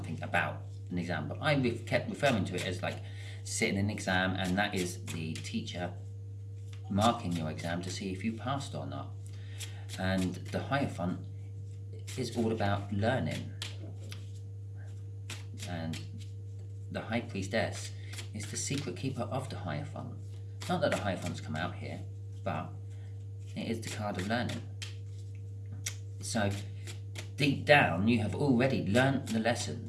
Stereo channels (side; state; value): both; identical; correlation 1.00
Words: about an exam, but I kept referring to it as like sitting in an exam, and that is the teacher marking your exam to see if you passed or not. And the Hierophant is all about learning. And the High Priestess is the secret keeper of the Hierophant. Not that the Hierophants come out here, but it is the card of learning. So deep down, you have already learnt the